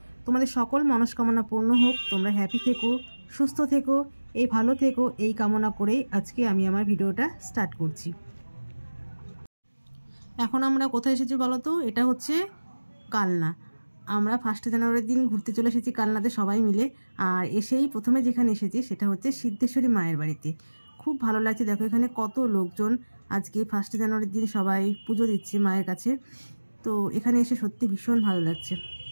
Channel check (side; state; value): both; inverted; correlation -1.00